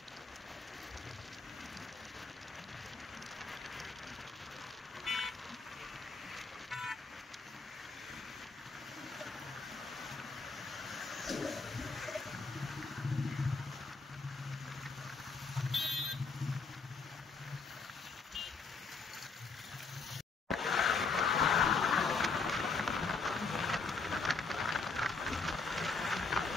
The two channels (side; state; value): right; quieter; 4.3 dB